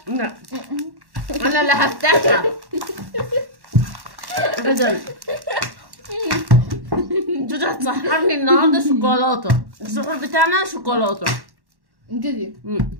لا انا اللي هفتحها ابدا. جودي هتسحرني النهارده شوكولاته. السحور بتاعنا شوكولاته كده.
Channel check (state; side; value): late; left; 1.1 ms